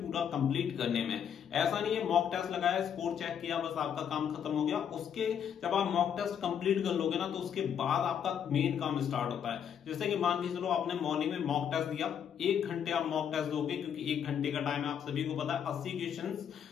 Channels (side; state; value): right; quieter; 8.4 dB